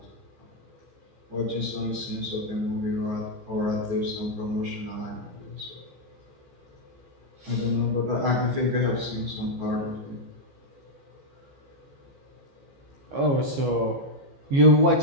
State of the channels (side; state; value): left; late; 15 ms